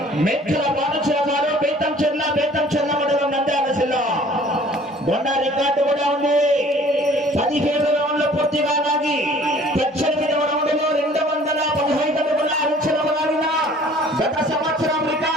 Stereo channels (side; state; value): both; normal; correlation 0.52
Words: మెక్కల బాలచల గారు బేతం చెల్ల మండలం నంద్యాల జిల్లా బొండ రికార్డు కూడా ఉంది 17 రౌండ్లు పూర్తిగా లాగి 18వ రౌండ్లో 215 అడుగుల అంచనా లాగిన గత సంవత్సరం